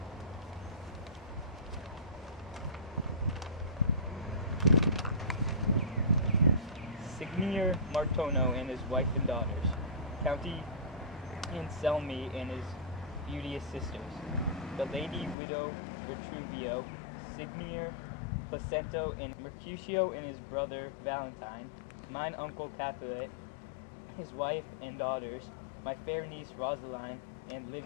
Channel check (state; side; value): drops out; right; at 15.4 s